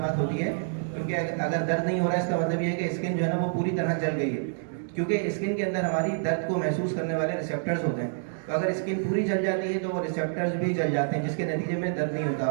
بات ہوتی ہے، کیونکہ اگر درد نہیں ہو رہا ہے اس کا مطلب یہ ہے کہ اسکن جو ہے نا وہ پوری طرح جل گئی ہے، کیونکہ اسکن کے اندر ہماری درد کو محسوس کرنے والے ریسیپٹرز ہوتے ہیں. تو اگر اسکن پوری جل جاتی ہے تو وہ ریسیپٹرز بھی جل جاتے ہیں، جس کے نتیجے میں درد نہیں ہوتا.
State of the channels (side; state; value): left; silent; digital silence